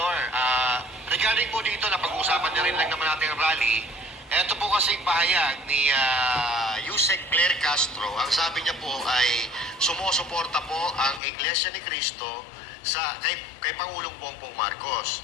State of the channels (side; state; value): right; drops out; at 11.2 s